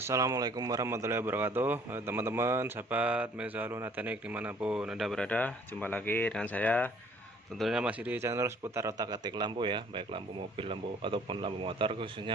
warahmatullahi wabarakatuh. Teman-teman, sahabat Mezalun Teknik dimanapun Anda berada, jumpa lagi dengan saya. Tentunya masih di channel seputar otak-atik lampu ya, baik lampu mobil, lampu ataupun lampu motor,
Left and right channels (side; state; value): both; normal; correlation 0.57